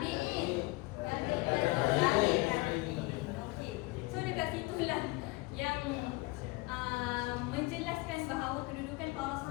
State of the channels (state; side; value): quieter; right; 23.2 dB